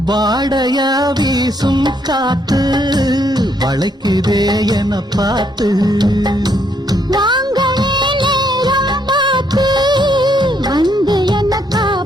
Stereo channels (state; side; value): normal; both; correlation 0.72